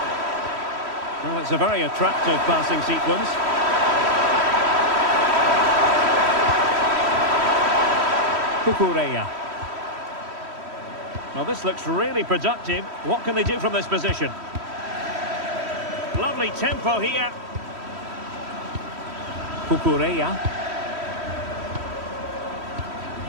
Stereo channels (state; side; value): late; left; 3.1 ms